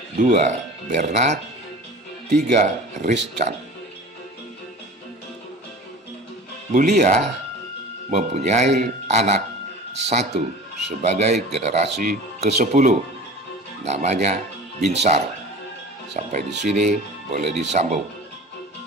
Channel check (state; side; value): normal; both; correlation 0.39